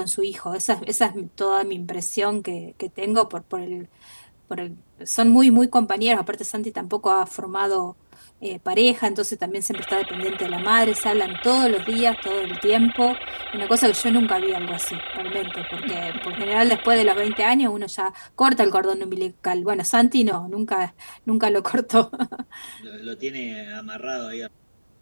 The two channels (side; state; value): both; inverted; correlation -1.00